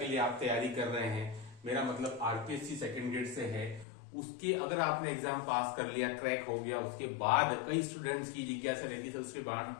लिए आप तैयारी कर रहे हैं, मेरा मतलब आरपीएससी सेकंड ग्रेड से है, उसके अगर आपने एग्जाम पास कर लिया, क्रैक हो गया, उसके बाद कई स्टूडेंट्स की जिज्ञासा रहती है उसके बाद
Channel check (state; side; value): drops out; right; at 3.9 s